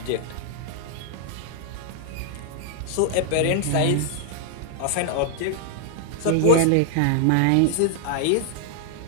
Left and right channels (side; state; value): both; different; correlation 0.00